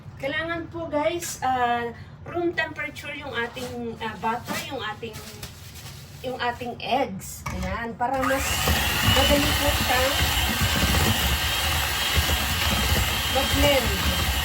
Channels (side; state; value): both; identical; correlation 1.00